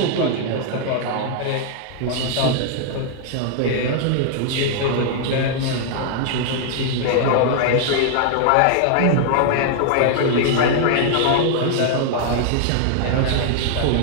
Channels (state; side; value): different; both; correlation 0.00